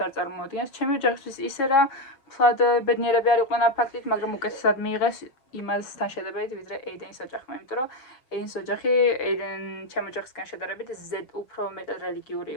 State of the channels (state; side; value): late; right; 6.9 ms